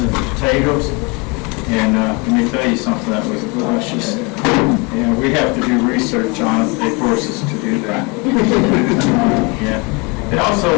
and potatoes. And let me tell you something, that was delicious. Yeah, we have to do research on it. They force us to do that. Yeah. They also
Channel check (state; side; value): quieter; right; 29.5 dB